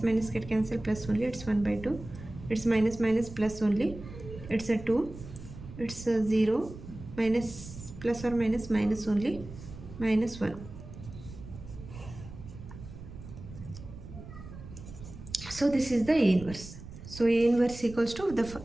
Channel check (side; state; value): right; noise; rumble, 14 dB below the sound